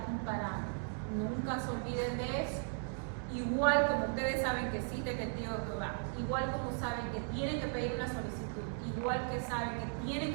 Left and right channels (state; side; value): silent; left; 53 dB below the other